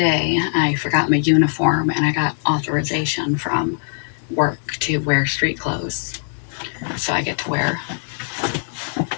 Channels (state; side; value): silent; right; digital silence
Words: I forgot my uniform and I got authorization from work to wear street clothes. So I get to wear